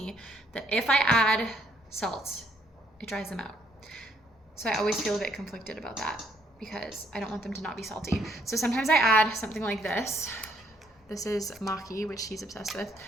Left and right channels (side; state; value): both; normal; correlation 0.69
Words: that if I add salt, it dries them out. So I always feel a bit conflicted about that because I don't want them to not be salty. So sometimes I add something like this. This is maki, which he's obsessed with,